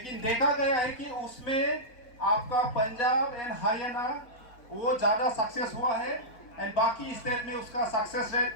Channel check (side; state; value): right; late; 4.0 ms